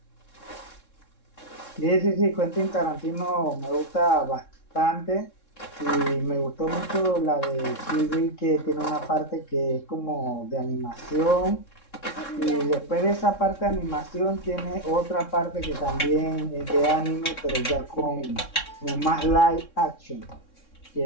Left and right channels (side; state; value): right; late; 3.6 ms